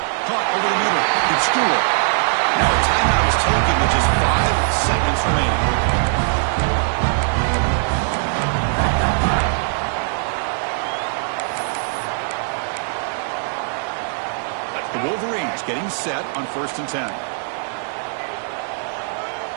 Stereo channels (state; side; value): silent; left; digital silence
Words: Caught over the middle. It's Stewart. Now a timeout is taken with just 5 seconds remaining. The Wolverines getting set on 1st and 10.